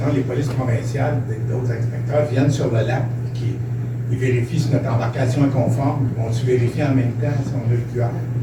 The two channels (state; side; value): identical; both; correlation 1.00